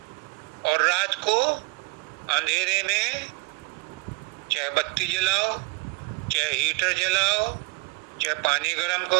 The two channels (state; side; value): quieter; left; 27.8 dB